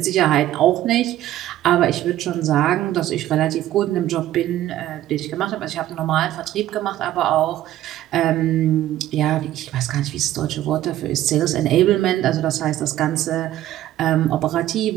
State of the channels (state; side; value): quieter; left; 13.6 dB